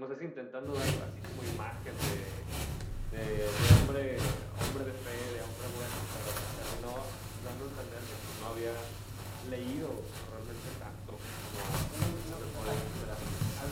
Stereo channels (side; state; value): both; identical; correlation 1.00